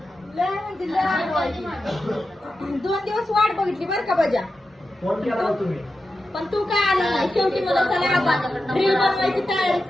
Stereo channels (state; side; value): normal; both; correlation 0.91